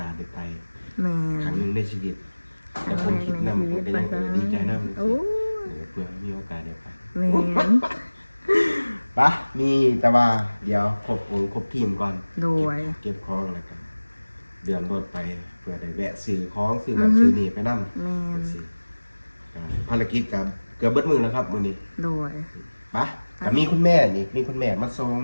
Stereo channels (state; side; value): inverted; both; correlation -1.00